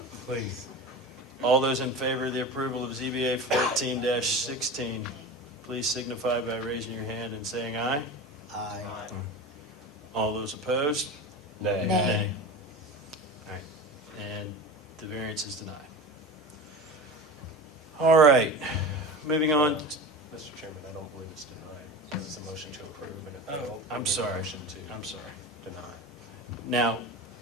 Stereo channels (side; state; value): both; normal; correlation 0.30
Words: Please. All those in favor of the approval of ZBA 14-16, please signify by raising your hand and saying aye. Aye. All those opposed? Nay. Nay. All right, and the variance is denied. All right, moving on. Mr. Chairman, I don't believe it's denied. This is a motion to approve, and it failed. I'm We need a sorry. motion to I'm sorry. deny. Now,